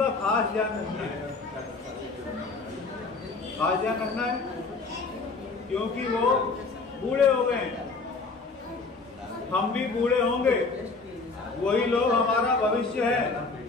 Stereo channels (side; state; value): right; quieter; 4.1 dB